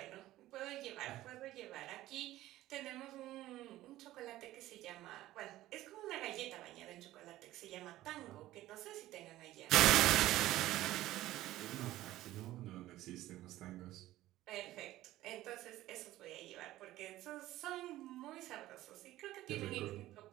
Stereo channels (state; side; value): quieter; left; 15.5 dB